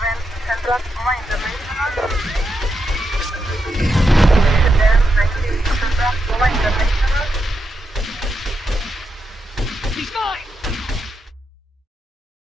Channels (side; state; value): both; normal; correlation 0.84